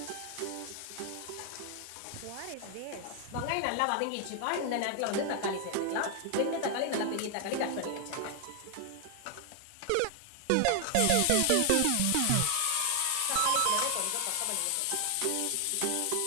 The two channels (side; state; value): both; different; correlation 0.00